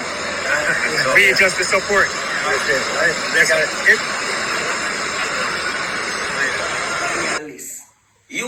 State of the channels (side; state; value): both; identical; correlation 1.00